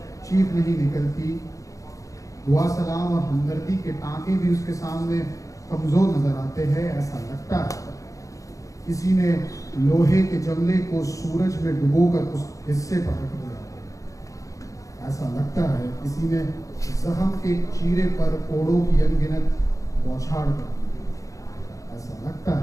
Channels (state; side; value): late; right; 0.16 ms